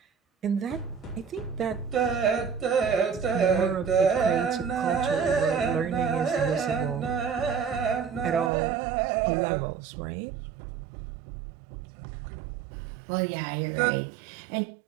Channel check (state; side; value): drops out; left; at 8.5 s